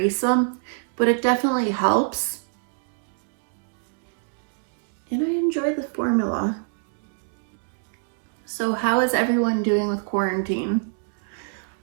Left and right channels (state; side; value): silent; left; digital silence